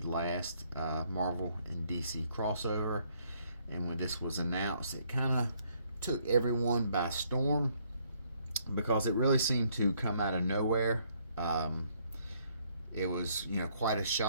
last Marvel and DC crossover, and when this was announced, it kind of took everyone by storm because it really seemed to come out of nowhere. It was, quite a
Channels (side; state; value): both; inverted; correlation -0.67